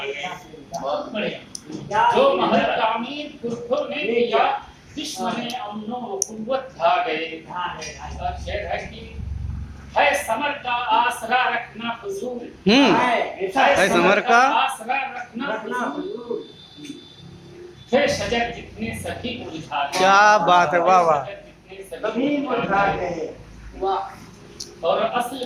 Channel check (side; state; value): both; identical; correlation 1.00